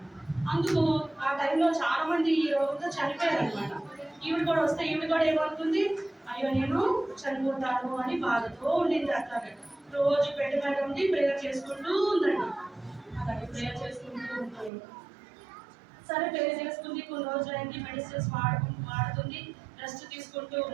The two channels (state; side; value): drops out; left; at 14.7 s